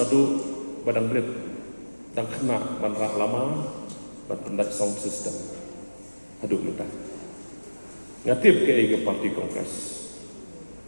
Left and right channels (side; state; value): both; inverted; correlation -1.00